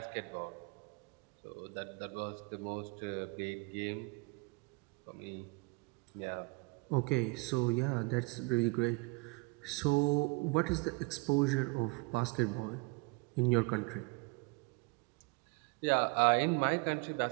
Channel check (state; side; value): quieter; left; 28.8 dB